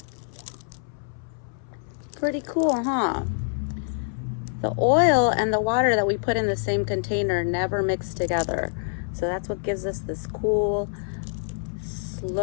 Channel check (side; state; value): right; silent; 61 dB below the other